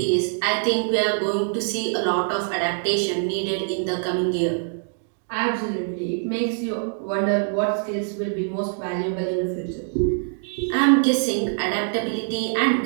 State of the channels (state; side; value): silent; left; digital silence